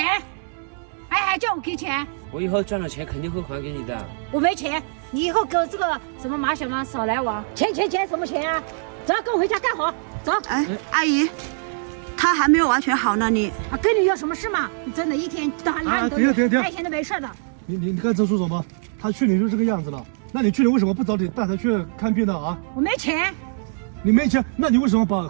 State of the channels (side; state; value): left; silent; digital silence